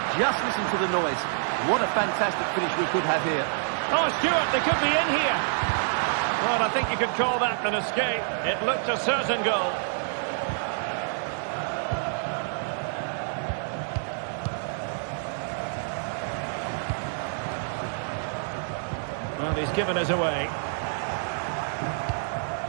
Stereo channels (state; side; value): silent; left; digital silence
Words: Just listen to the noise. What a fantastic finish we could have here. Oh, Stuart, they could be in here. Well, I think you could call that an escape. It looked a certain goal. Well, he's given us away.